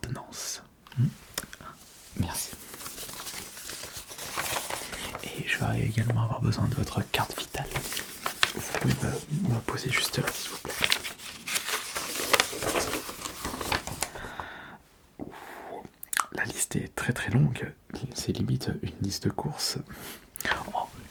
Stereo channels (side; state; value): both; identical; correlation 1.00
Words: Merci. Et je vais également avoir besoin de votre carte vitale. Vous pouvez me poser juste là, s'il vous plaît. La liste est très très longue. C'est limite une liste de courses. Oh,